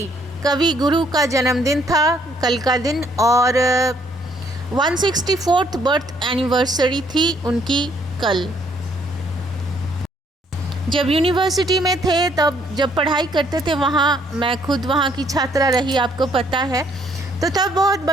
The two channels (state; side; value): normal; both; correlation 0.67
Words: गुरु का जन्मदिन था कल का दिन। और 164th बर्थ एनिवर्सरी थी उनकी कल। जब यूनिवर्सिटी में थे, तब जब पढ़ाई करते थे वहाँ, मैं खुद वहाँ की छात्रा रही, आपको पता है। तो तब बहुत